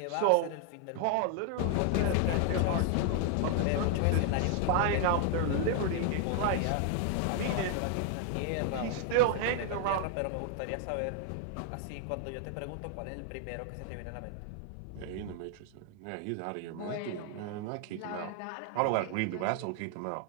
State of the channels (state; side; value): different; both; correlation 0.00